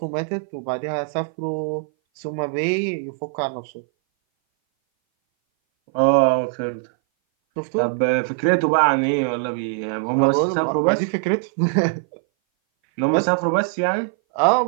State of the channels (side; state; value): left; silent; 59 dB below the other